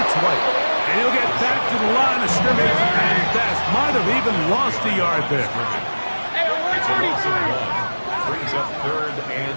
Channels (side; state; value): both; inverted; correlation -1.00